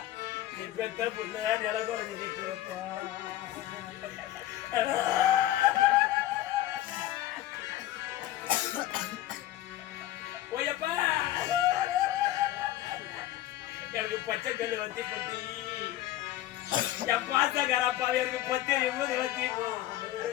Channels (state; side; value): quieter; right; 14.3 dB